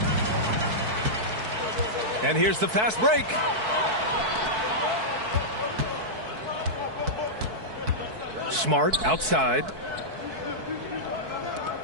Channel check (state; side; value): late; left; 4.6 ms